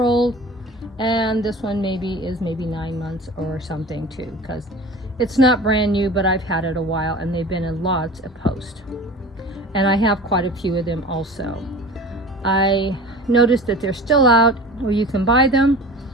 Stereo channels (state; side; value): normal; both; correlation 0.39